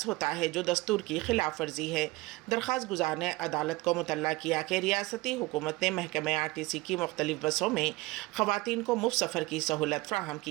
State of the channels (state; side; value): quieter; left; 21.4 dB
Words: होता है, जो दस्तूर की खिलाफ वर्जी है। दरख्वास्त गुजार ने अदालत को मुतल्ला किया कि रियासती हुकूमत ने महकमे आरटीसी की मुख्तलिफ बसों में ख़वातीन को मुफ्त सफ़र की सहूलत फ्राहम